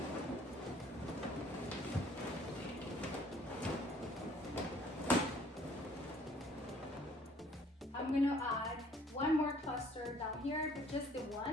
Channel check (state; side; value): normal; both; correlation 0.57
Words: I'm gonna add one more cluster down here, but just the